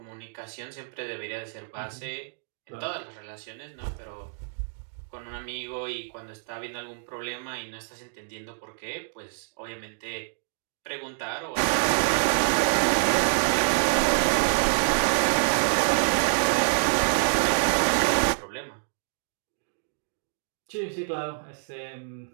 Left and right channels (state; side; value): silent; left; digital silence